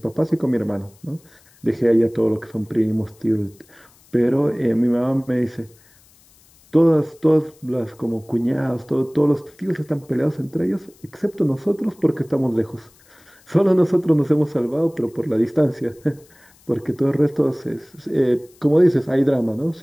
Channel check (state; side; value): noise; left; hiss, 29 dB below the sound